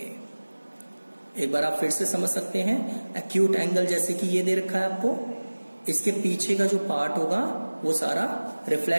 एक बार आप फिर से समझ सकते हैं। एक्यूट एंगल जैसे कि ये दे रखा है आपको, इसके पीछे का जो पार्ट होगा वो सारा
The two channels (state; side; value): inverted; both; correlation -1.00